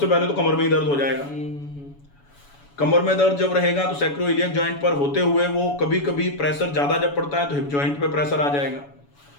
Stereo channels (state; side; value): late; right; 7.0 ms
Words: पहले तो कमर में ही दर्द हो जाएगा। कमर में दर्द जब रहेगा तो सैक्रोइलियक जॉइंट पर होते हुए वो कभी कभी प्रेशर ज्यादा जब पड़ता है तो हिप जॉइंट पे प्रेशर आ जाएगा।